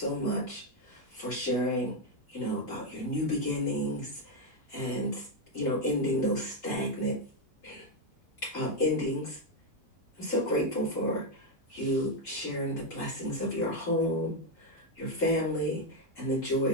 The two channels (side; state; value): both; normal; correlation 0.03